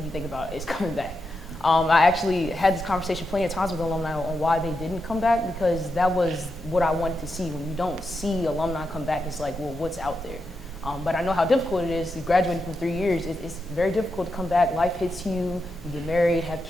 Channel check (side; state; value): both; normal; correlation 0.86